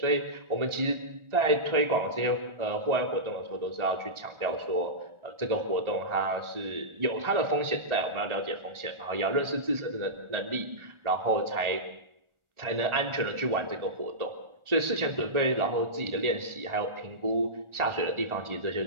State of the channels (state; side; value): late; left; 1.4 ms